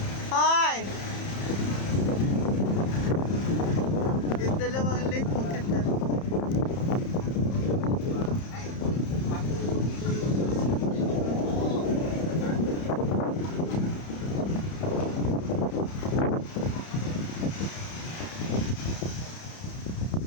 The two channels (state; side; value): late; right; 31 ms